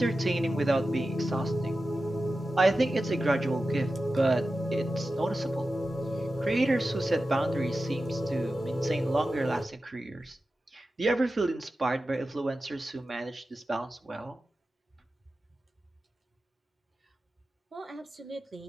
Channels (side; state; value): both; normal; correlation 0.93